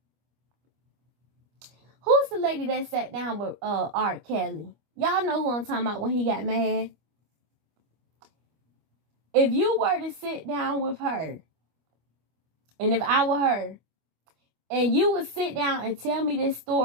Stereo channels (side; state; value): left; late; 25 ms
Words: Who's the lady that sat down with R. Kelly? Y'all know who I'm talking about when he got mad. If you were to sit down with her, and if I were her, and you would sit down and tell me this